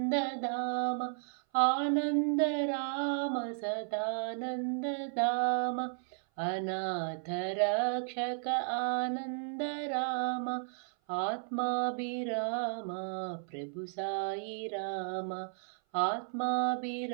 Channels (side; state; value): left; silent; 55 dB below the other